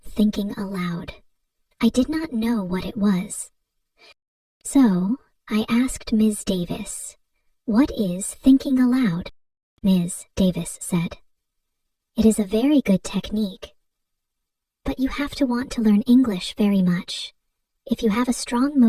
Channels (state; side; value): identical; both; correlation 1.00